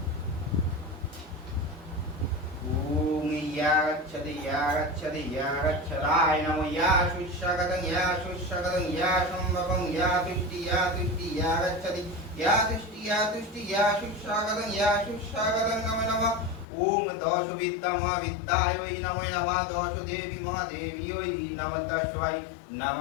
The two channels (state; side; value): drops out; right; at 16.7 s